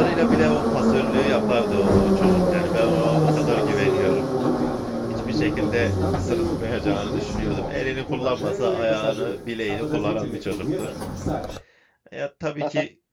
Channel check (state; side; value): identical; both; correlation 1.00